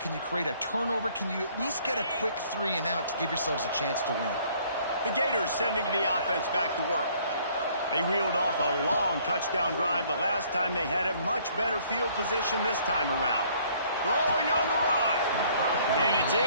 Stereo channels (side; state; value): both; inverted; correlation -0.60